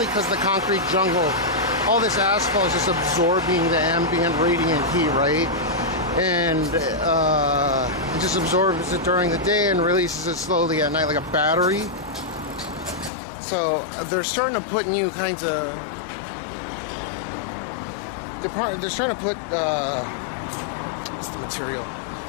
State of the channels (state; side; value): drops out; right; at 13.1 s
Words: because the concrete jungle, all this asphalt is just absorbing the ambient radiant heat, right? And it just absorbs it during the day and releases it slowly at night like a battery. So they're starting to put new kinds of. They're trying to put what's the material